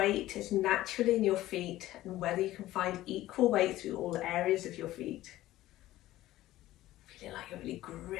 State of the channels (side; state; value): right; quieter; 15.5 dB